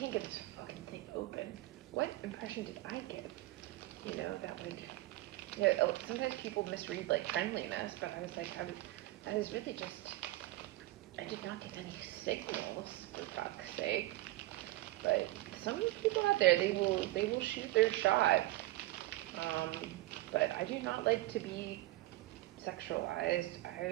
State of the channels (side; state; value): left; quieter; 18.1 dB